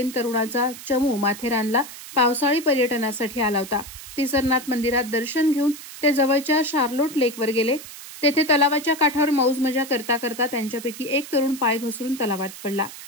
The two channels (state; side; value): noise; right; hiss, 14 dB below the sound